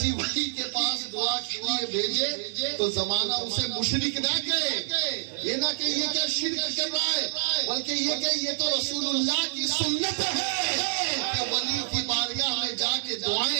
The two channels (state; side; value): silent; left; 60 dB below the other